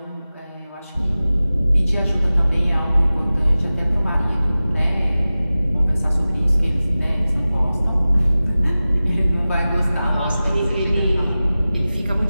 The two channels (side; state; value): both; inverted; correlation -0.96